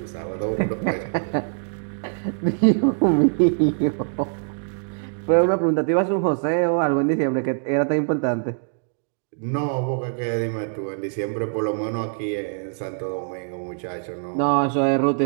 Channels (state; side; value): silent; left; digital silence